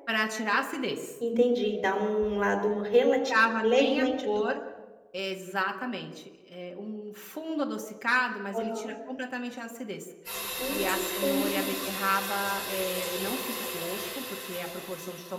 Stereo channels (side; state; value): both; identical; correlation 1.00